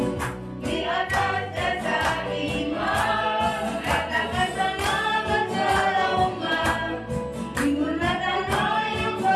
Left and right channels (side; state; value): both; identical; correlation 1.00